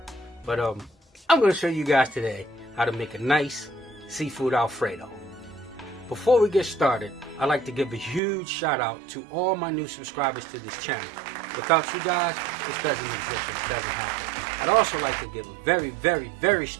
But I'm going to show you guys today how to make a nice seafood Alfredo. Before we get started, I'd like to give a huge shout out to all my new subscribers to this channel. Without you guys, this doesn't exist, it doesn't happen. I'd also like to give a very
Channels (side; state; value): left; drops out; at 8.2 s